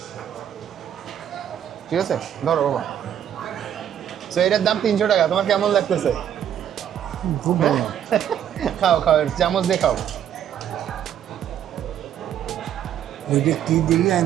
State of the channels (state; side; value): quieter; left; 9.9 dB